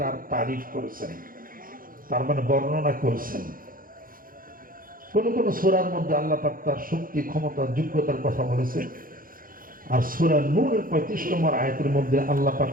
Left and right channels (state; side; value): late; left; 0.41 ms